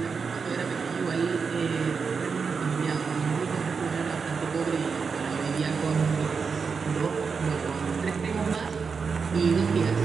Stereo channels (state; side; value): quieter; left; 5.4 dB